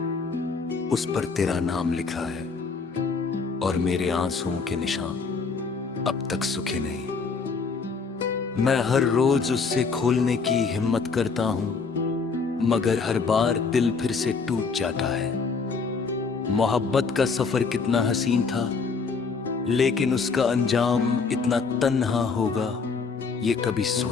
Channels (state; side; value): quieter; right; 4.9 dB